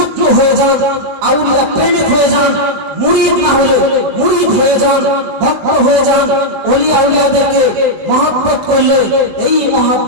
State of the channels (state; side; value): late; left; 19 ms